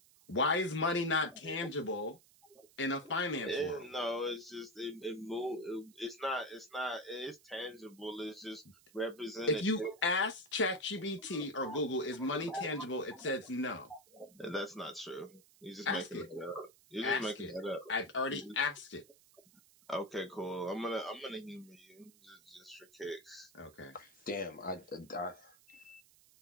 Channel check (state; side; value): noise; right; hiss, 26 dB below the sound